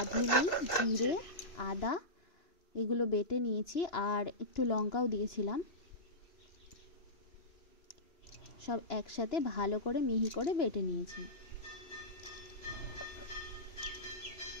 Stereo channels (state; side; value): late; right; 2.9 ms